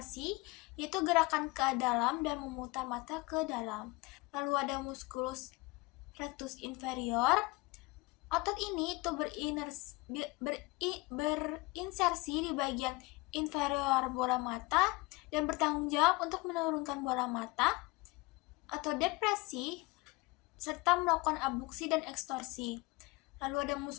yaitu gerakan ke dalam dan memutar mata ke dalam. Lalu ada musculus rectus inferior. Otot ini itu berinsersi di bagian inferior bola mata dan bertanggung jawab untuk menurunkan bola mata atau depresi serta melakukan abduksi dan ekstorsi. Lalu ada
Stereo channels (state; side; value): quieter; right; 23.8 dB